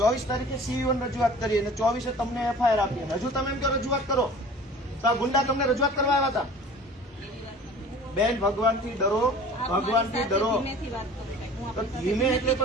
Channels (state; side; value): normal; both; correlation 0.44